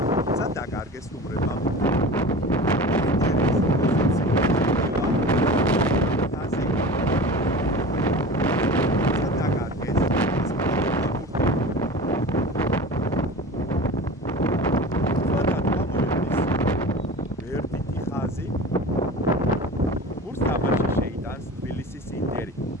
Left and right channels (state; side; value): normal; both; correlation 0.35